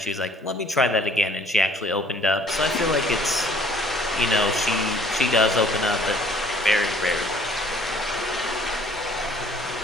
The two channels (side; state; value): both; normal; correlation 0.56